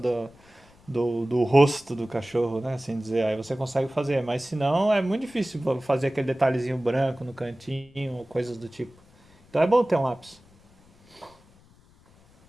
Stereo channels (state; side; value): noise; left; rumble, 28 dB below the sound